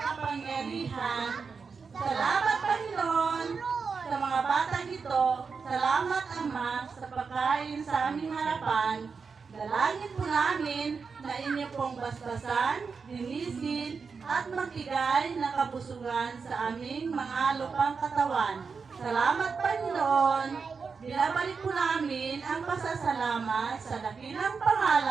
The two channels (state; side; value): quieter; left; 5.3 dB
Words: Salamat, Panginoon, sa mga batang ito. Salamat, Ama, sa pagkain sa aming harapan. Dalangin po namin na inyo pong basbasan, linisin, at magbigay ng kabusugan sa aming mga lupang katawan. Salamat, Panginoon. Binabalik po namin ang pasasalamat sa dakilang